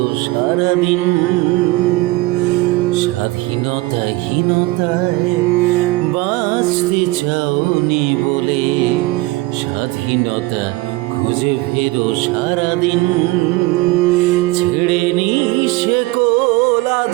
সারাদিন। স্বাধীনতাহীনতায় বাঁচতে চাওনি বলে স্বাধীনতা খুঁজে ফেরো সারাদিন। ছেড়েনি সে কোল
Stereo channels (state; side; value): quieter; left; 20.4 dB